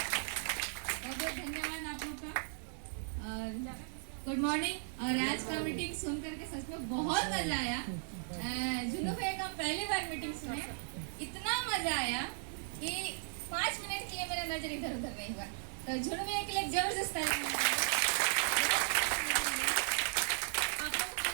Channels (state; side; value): silent; left; 53 dB below the other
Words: Good morning. और आज का मीटिंग सुन करके सच में बहुत मजा आया। जुनू भैया का पहली बार मीटिंग सुने, इतना मजा आया कि 5 मिनट के लिए मेरा नजर इधर उधर नहीं हुआ। तो जुनू भैया के लिए जबरदस्त ताली। आप लोग को